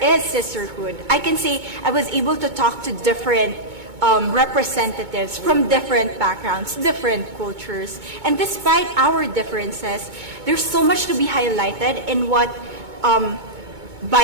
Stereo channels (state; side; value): late; left; 2.2 ms